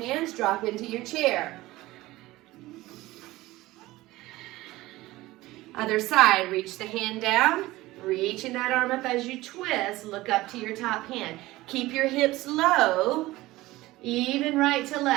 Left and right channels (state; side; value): quieter; left; 18.3 dB